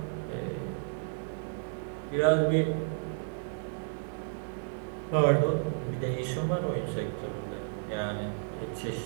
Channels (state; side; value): silent; left; 56 dB below the other